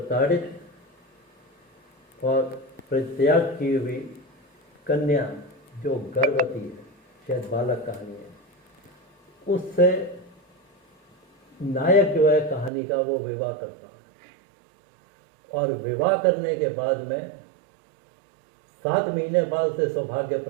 और परित्याग की हुई कन्या जो गर्भवती है, शायद बालक कहानी है, उससे नायक जो है कहानी का वो विवाह करता, और विवाह करने के बाद में 7 महीने बाद से सौभाग्य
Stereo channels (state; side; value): drops out; left; at 12.7 s